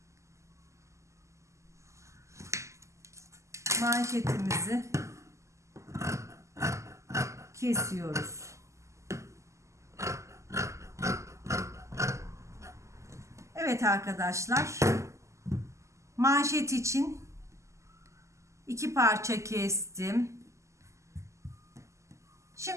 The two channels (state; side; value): late; left; 0.14 ms